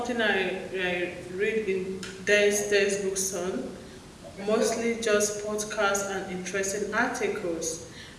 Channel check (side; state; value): both; identical; correlation 1.00